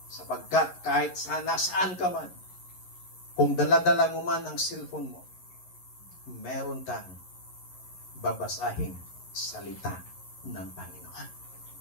Sapagkat kahit saan ka man, kung dala-dala mo man ang cellphone mo, meron kang babasahing salita ng Panginoon.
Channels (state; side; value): late; right; 11 ms